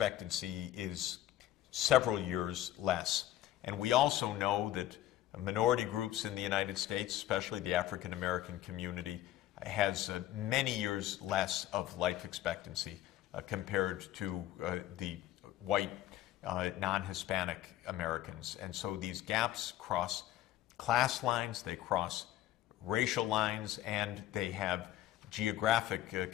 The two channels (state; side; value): quieter; right; 13.5 dB